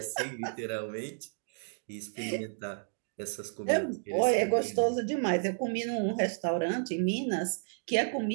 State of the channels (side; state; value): left; silent; digital silence